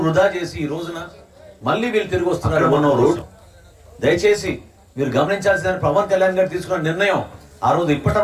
వృధా చేసి ఈ రోజున మళ్ళీ వీళ్ళు తిరిగి వస్తున్నారు మన రోజు. దయచేసి మీరు గమనించాల్సిన పవన్ కళ్యాణ్ గారు తీసుకున్న నిర్ణయం ఆ రోజు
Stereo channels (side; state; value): both; identical; correlation 1.00